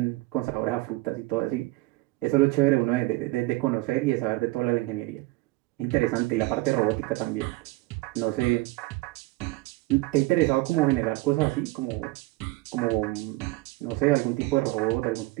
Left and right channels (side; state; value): left; quieter; 20.7 dB